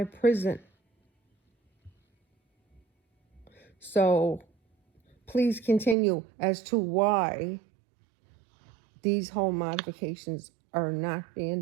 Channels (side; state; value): left; drops out; at 6.0 s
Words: prison. So please continue as to why these home modifications are not